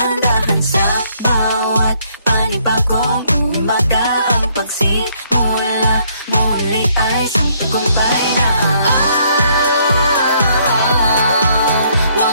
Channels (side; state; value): both; inverted; correlation -0.68